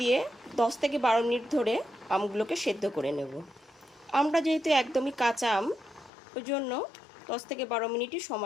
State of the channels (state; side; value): drops out; right; at 6.1 s